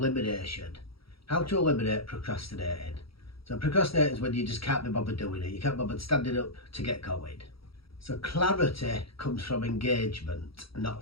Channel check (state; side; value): late; right; 0.75 ms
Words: How to eliminate procrastinating. So procrastinating is when you just can't be bothered doing it. You can't bother standing up to get going. So clarity comes from engagement,